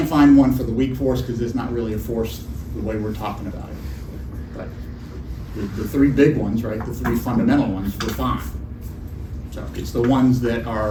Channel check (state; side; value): identical; both; correlation 1.00